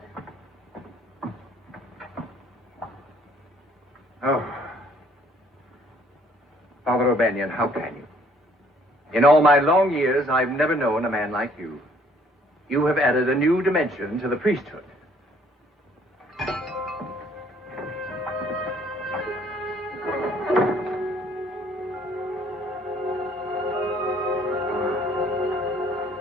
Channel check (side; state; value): both; normal; correlation 0.61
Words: Oh. Father O'Banion, how can you? In all my long years, I've never known a man like you. You have added a new dimension to the priesthood.